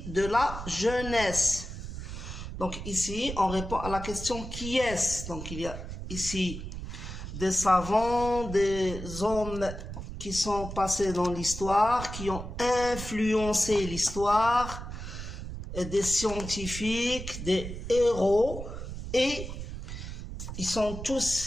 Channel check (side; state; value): right; noise; rumble, 8 dB below the sound